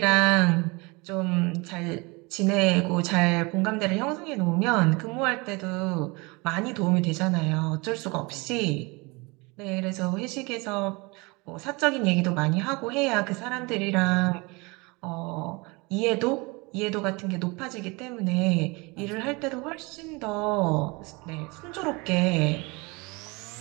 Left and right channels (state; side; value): quieter; left; 26.6 dB